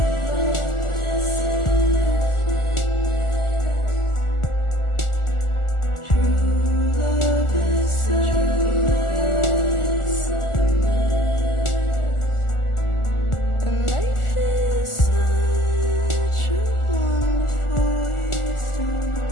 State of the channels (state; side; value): late; right; 1.4 ms